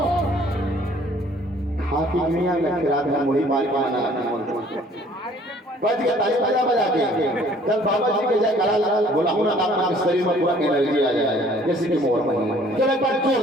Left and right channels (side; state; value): both; normal; correlation 0.57